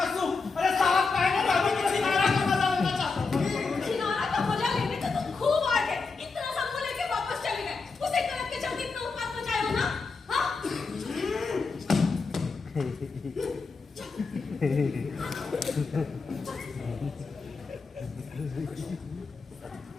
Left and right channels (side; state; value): right; quieter; 4.5 dB